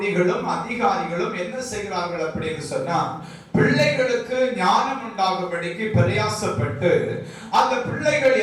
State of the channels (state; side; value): identical; both; correlation 1.00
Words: அதிகாரிகளும் என்ன செய்கிறார்கள் அப்படின்னு சொன்னா, பிள்ளைகளுக்கு ஞானம் உண்டாகும்படிக்கு பிரயாசப்பட்டு அந்த பிள்ளைகள்